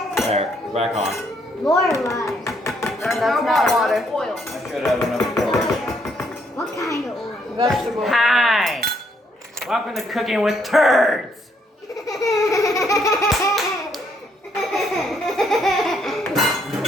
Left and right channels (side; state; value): both; normal; correlation 0.71